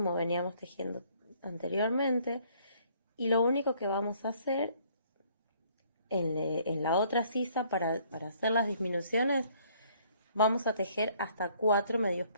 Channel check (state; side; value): inverted; both; correlation -0.62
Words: veníamos tejiendo anteriormente. Y lo único que vamos a hacer en la otra sisa para hacer las disminuciones, vamos a tejer hasta 4 medios